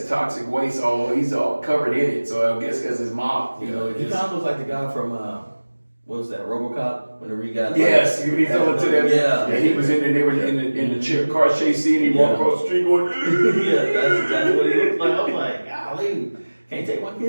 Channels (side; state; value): both; inverted; correlation -1.00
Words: toxic waste. He's all covered in it. So I guess because his mop, He kind of looks like the guy from what was that, RoboCop? Whenever he got yes, when he fell into that. Yeah, he was in there. They were in the car chase scene. He walked across the street going. yeah, that's exactly what he looked like. I was like, golly, can't take my